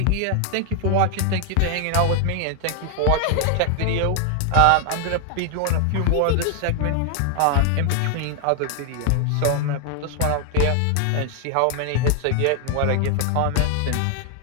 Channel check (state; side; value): different; both; correlation 0.00